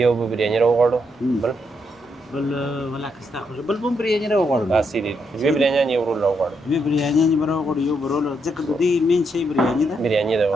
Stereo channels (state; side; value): normal; both; correlation 0.78